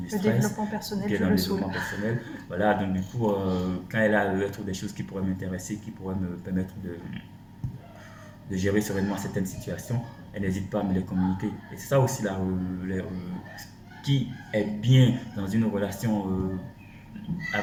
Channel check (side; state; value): both; identical; correlation 1.00